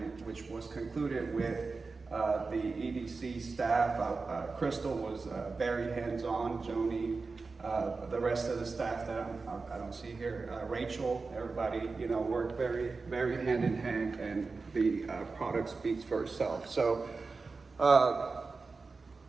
which was concluded with the EDC staff. Crystal was very hands-on, Joni, the rest of the staff that I don't see here, Rachel, everybody, you know, worked very, very hand in hand, and the product speaks for itself. So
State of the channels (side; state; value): left; quieter; 4.2 dB